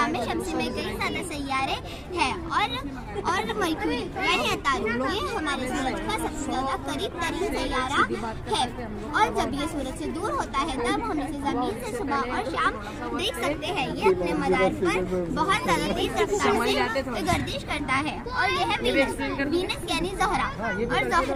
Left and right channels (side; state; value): both; identical; correlation 1.00